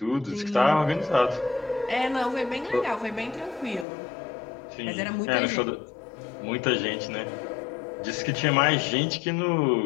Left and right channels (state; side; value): drops out; right; at 3.9 s